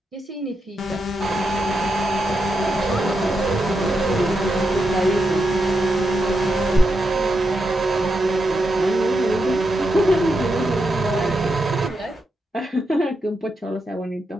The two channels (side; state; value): both; normal; correlation 0.85